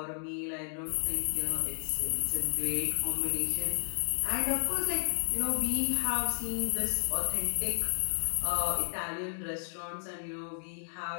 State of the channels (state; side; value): silent; right; digital silence